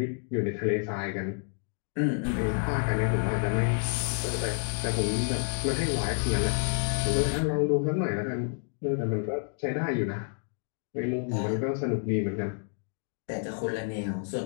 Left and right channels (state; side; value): silent; right; 56 dB below the other